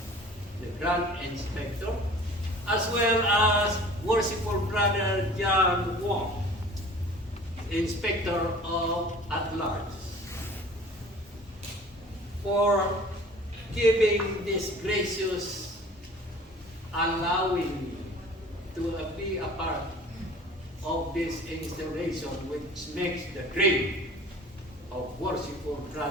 the Grand Inspector, as well as worshipful brother John Wong, Inspector of at Large, for giving this gracious allowing me to be a part of this installation, which makes the dream of worshipful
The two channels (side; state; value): both; normal; correlation 0.46